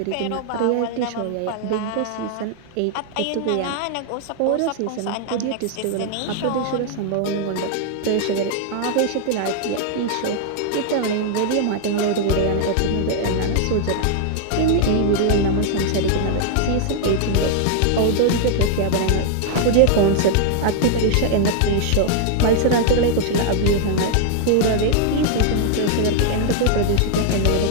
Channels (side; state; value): both; different; correlation 0.00